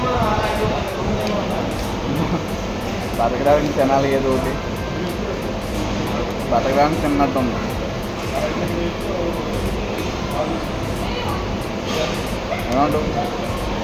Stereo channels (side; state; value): both; identical; correlation 1.00